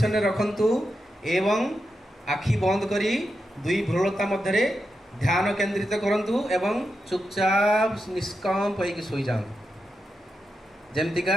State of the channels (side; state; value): both; normal; correlation 0.87